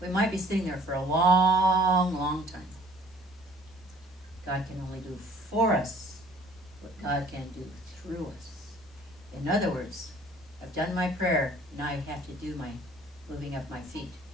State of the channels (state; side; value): normal; both; correlation 0.54